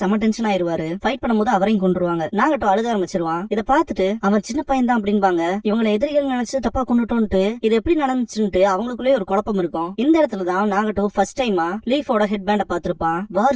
செம டென்ஷன் ஆயிருவாரு. ஃபைட் பண்ணும்போது அவரையும் கொண்டுருவாங்க. நாகட்டோ அழுக ஆரம்பிச்சிருவான். இதை பார்த்துட்டு அவன் சின்ன பையன் தான் அப்படின்பாங்க. இவங்களை எதிரிகள் நினைச்சு தப்பா கொண்டுட்டோன்ட்டு இது எப்படி நடந்துச்சுன்ட்டு அவங்களுக்குள்ளே ஒரு குழப்பம் இருக்கும். இந்த இடத்துலதான் நாகட்டோ ஃபர்ஸ்ட் டைமா லீஃபோட ஹெட் பேண்ட பாத்திருப்பான்.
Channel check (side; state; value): both; identical; correlation 1.00